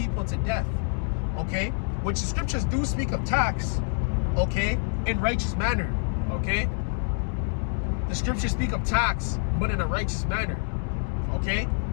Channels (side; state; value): right; silent; 60 dB below the other